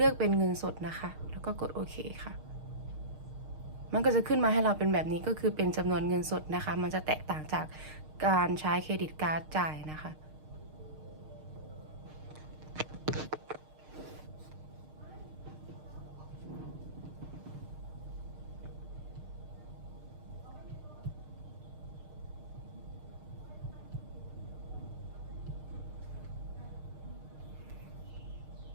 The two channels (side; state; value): left; late; 6.5 ms